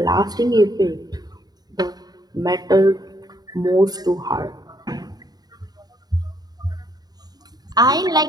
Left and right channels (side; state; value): left; late; 0.19 ms